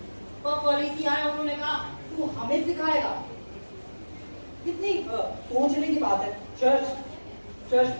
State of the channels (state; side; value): inverted; both; correlation -1.00